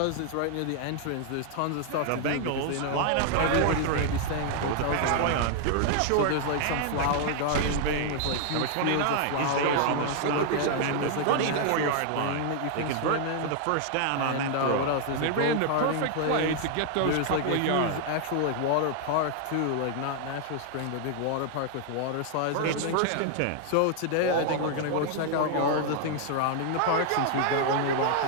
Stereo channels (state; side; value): different; both; correlation 0.00